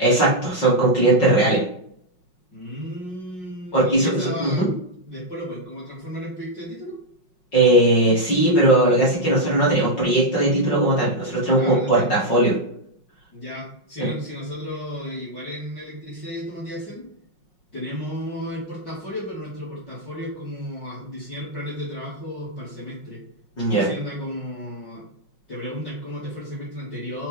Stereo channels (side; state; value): right; late; 5.5 ms